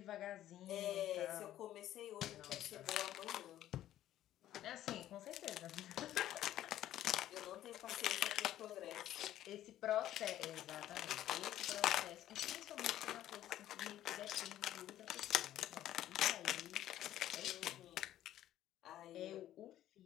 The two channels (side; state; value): right; quieter; 12.8 dB